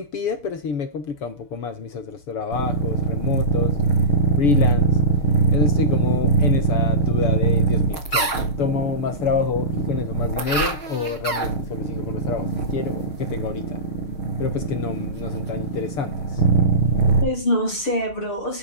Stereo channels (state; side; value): late; right; 6.4 ms